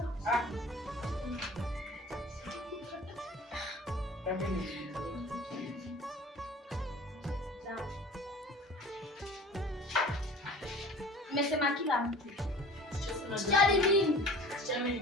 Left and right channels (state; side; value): normal; both; correlation 0.43